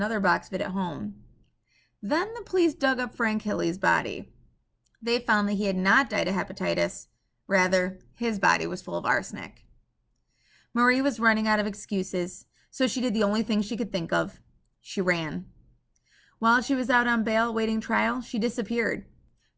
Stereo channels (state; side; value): identical; both; correlation 1.00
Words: box of it at home. Then the police dug up Frank Hilley's body. They found that he had not died of hepatitis, Rather, his body was full of arsenic. Marie was running out of excuses, so she did the only thing she could think of. She ran. While she was out on bail awaiting trial, she disappeared.